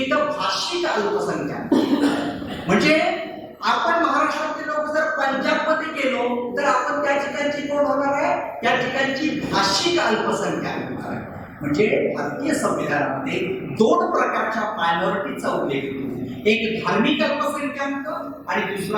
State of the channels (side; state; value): both; identical; correlation 1.00